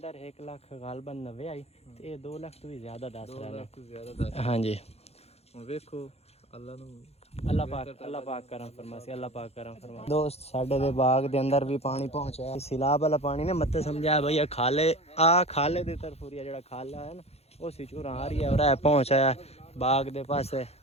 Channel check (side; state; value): right; late; 0.30 ms